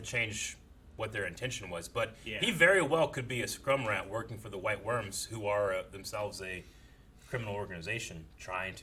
what their intention was. But he very well could be a scrum rat working for the White Worms, who are themselves a criminal organization trying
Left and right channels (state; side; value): identical; both; correlation 1.00